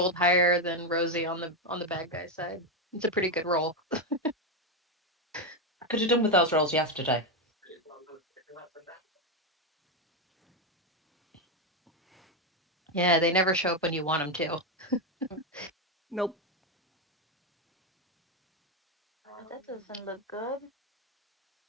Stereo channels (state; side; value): normal; both; correlation 0.07